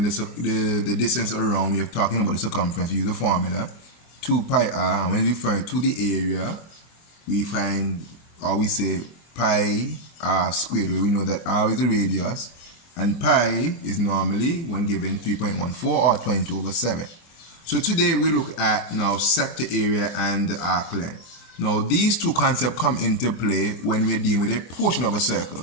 the distance around, we are talking about the circumference, we use the formula 2 pi r, and when we refer to the area, we find, or we say pi r squared, where we know that r is the radius and pi is normally, when given, 3.14 or 22/7. So today we look at now sector area and arc length. Now these two concepts come into play when we're dealing with a portion of a circle.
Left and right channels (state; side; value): late; right; 24 ms